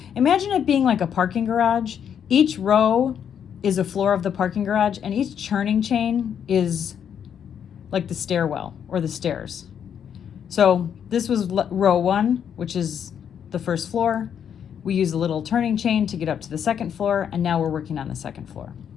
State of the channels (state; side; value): quieter; right; 8.4 dB